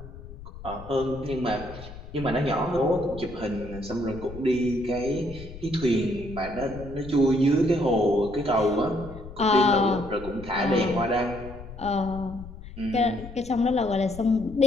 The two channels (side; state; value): left; noise; rumble, 14 dB below the sound